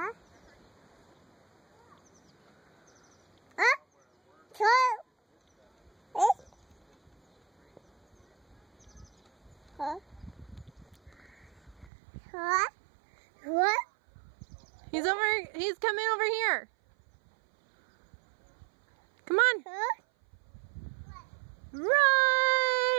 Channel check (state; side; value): drops out; left; at 11.9 s